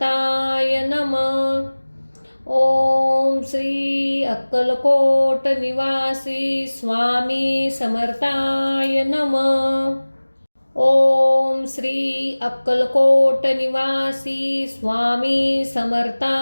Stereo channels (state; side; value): inverted; both; correlation -1.00